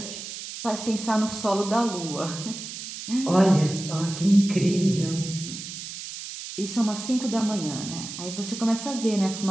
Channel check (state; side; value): noise; right; hiss, 9 dB below the sound